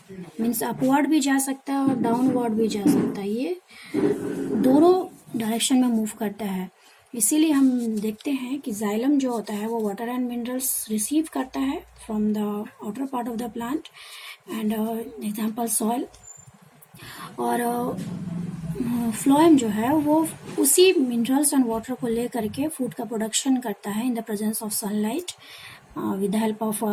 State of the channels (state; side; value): identical; both; correlation 1.00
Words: means upward भी जा सकता है और डाउनवर्ड भी जा सकता है, ये दोनों डायरेक्शन में मूव करता है। इसीलिए हम देखते हैं कि जाइलम जो होता है वो वाटर एंड मिनरल्स रिसीव करता है from the outer part of the plant and example soil, और फ्लोएम जो है वो उसी मिनरल्स एंड वाटर को ले करके फूड का प्रोडक्शन करता है in the presence of sunlight with the help of